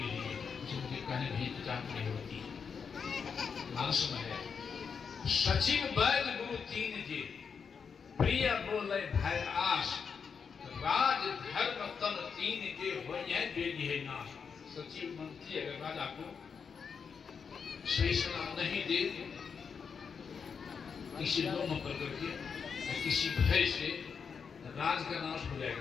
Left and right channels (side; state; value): right; quieter; 6.2 dB